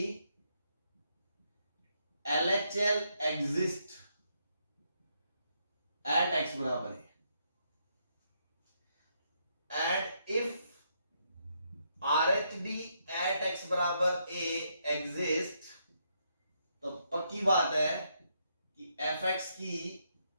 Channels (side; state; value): both; inverted; correlation -0.77